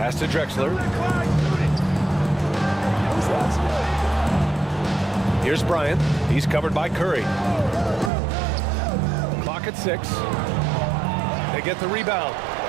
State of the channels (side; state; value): left; drops out; at 8.1 s